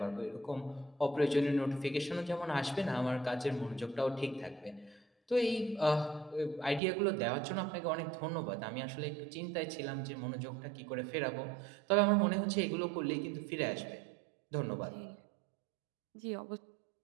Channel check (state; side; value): drops out; left; at 6.8 s